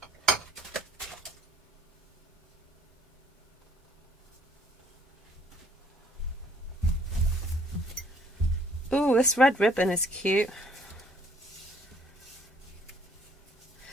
Ooh, this red ribbon is cute.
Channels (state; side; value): normal; both; correlation 0.61